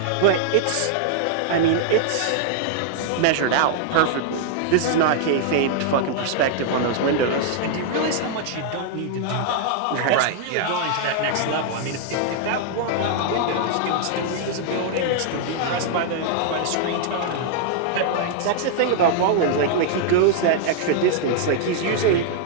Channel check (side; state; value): both; different; correlation -0.01